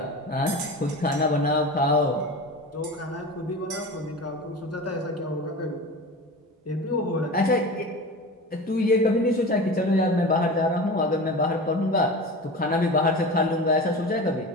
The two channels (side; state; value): both; normal; correlation 0.31